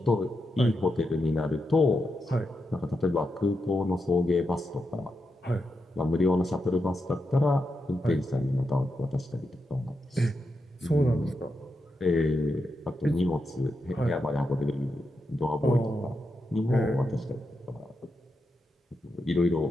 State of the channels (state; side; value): normal; both; correlation 0.86